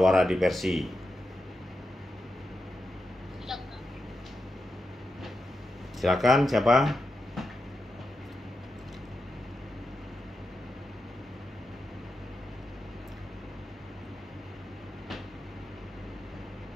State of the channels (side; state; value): both; normal; correlation 0.88